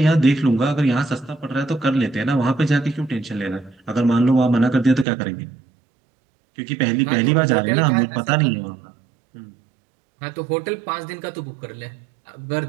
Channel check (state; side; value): drops out; left; at 5.1 s